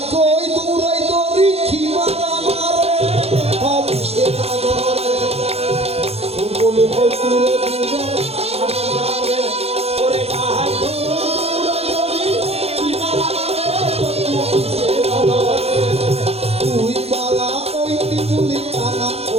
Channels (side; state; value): left; late; 0.29 ms